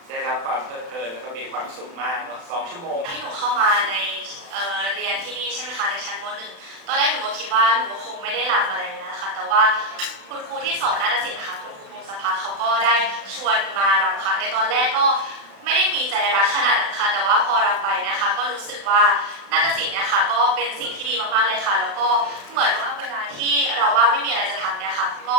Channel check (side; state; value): left; late; 35 ms